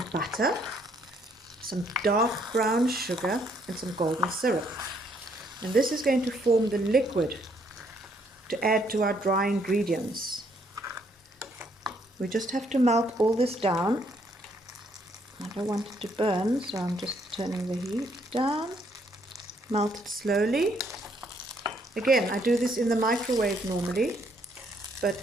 butter, some dark brown sugar and some golden syrup, and this is going to form the liquid to add to our dry ingredients. We just have to melt all this down. I don't want it to burn, so I'm just turning the heat down. Melt it slowly. Again, I do this in the microwave normally,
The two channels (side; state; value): both; normal; correlation 0.69